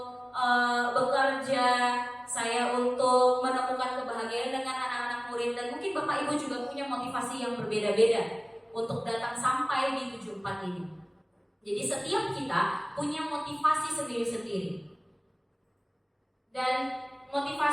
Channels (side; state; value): both; identical; correlation 1.00